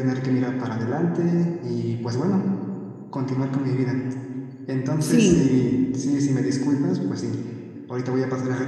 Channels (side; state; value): both; identical; correlation 1.00